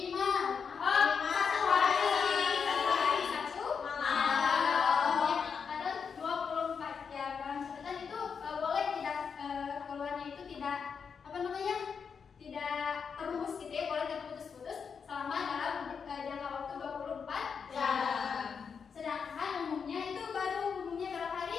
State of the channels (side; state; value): right; quieter; 6.2 dB